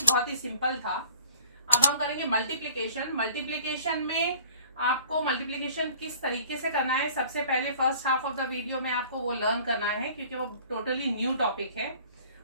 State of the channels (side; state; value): both; inverted; correlation -0.52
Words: बहुत ही सिंपल था। अब हम करेंगे मल्टीप्लिकेशन। मल्टीप्लिकेशन में आपको मल्टीप्लिकेशन किस तरीके से करना है, सबसे पहले first half of the video में आपको वो लर्न करना है, क्योंकि वो टोटली न्यू टॉपिक है।